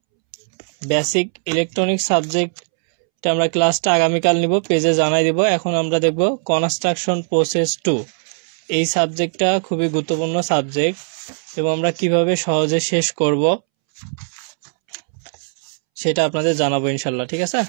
বেসিক ইলেকট্রনিক্স সাবজেক্ট আমরা ক্লাসটা আগামীকাল নিব, পেজে জানাই দিব। এখন আমরা দেখব কনস্ট্রাকশন প্রসেস 2। এই সাবজেক্টটা খুবই গুরুত্বপূর্ণ সাবজেক্ট, এবং আমরা কিভাবে সহজে শেষ করব সেটা আপনাদের জানাবো ইনশাল্লাহ, ঠিক আছে?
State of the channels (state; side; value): silent; left; 66 dB below the other